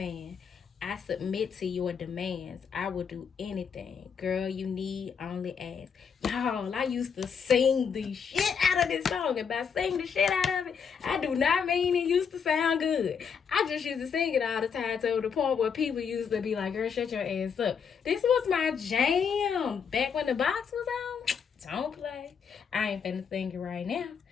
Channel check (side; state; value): right; quieter; 6.7 dB